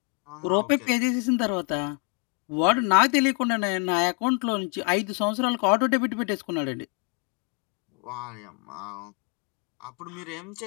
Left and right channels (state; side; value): quieter; right; 36.5 dB